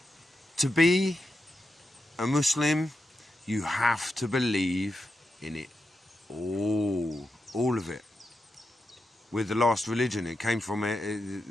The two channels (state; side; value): normal; both; correlation 0.87